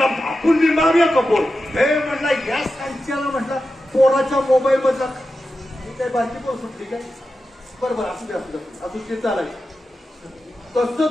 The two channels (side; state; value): both; normal; correlation 0.91